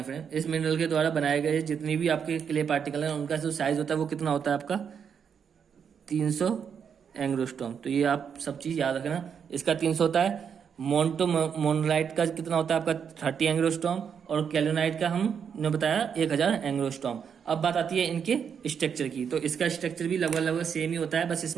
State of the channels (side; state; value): left; quieter; 7.2 dB